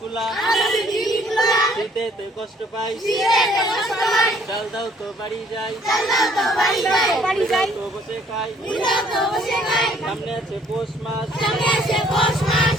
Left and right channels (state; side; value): normal; both; correlation 0.61